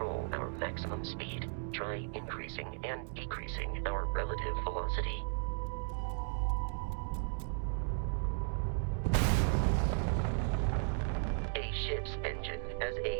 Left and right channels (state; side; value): silent; left; 54 dB below the other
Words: our maximum speed. Try increasing and decreasing our relative velocity. A ship's engine has